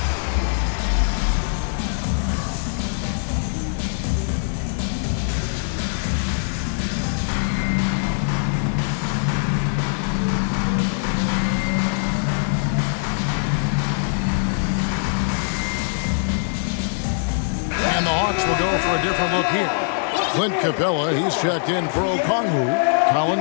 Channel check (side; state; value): right; silent; digital silence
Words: And the Hawks will go for a different look here. Clint Capella, he's checked in for Okongwu.